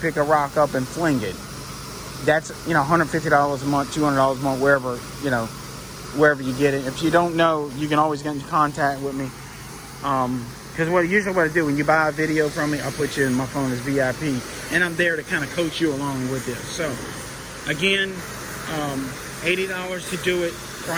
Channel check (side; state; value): both; identical; correlation 1.00